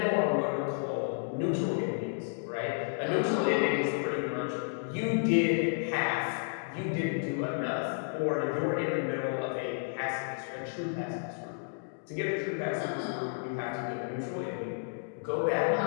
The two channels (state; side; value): silent; right; digital silence